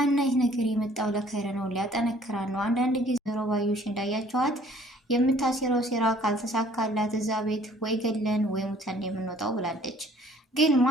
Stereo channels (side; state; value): both; normal; correlation 0.57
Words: ይህ ነገር የመጣው ለከይረ ነው፣ ሊያጠነክራን ነው። አንዳንድ ጊዜ ወይዘሮ ባዩሽ እንዳያቸዋት የምታሴረው ሴራ ካልተሳካላት እዛ ቤት ወይ ገለን ወይ ሙተን የምንወጣው ብላለች። ግን